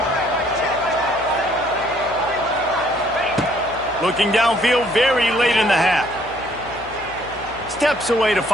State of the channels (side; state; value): left; noise; hum, 19 dB below the sound